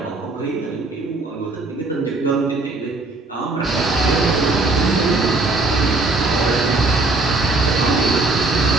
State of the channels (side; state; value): left; quieter; 3.3 dB